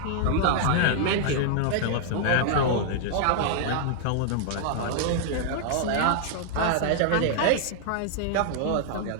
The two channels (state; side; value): different; both; correlation -0.01